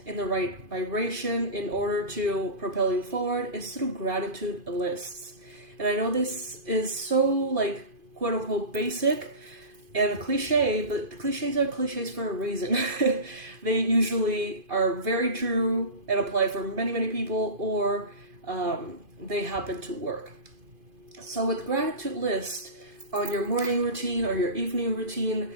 in the right vibration, in order to propel you forward, is through gratitude lists. And I know this is so, quote unquote, basic and cliche, but cliches are cliches for a reason. They usually are very true and apply for many, many people, or they happen to work. So with gratitude list on your morning routine or your evening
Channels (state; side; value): late; left; 2.5 ms